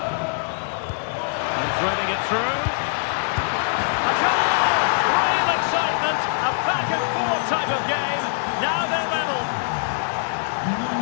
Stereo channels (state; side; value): silent; right; 58 dB below the other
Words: And threading it through. A goal! Real excitement. A back-and-forth type of game. Now they're level.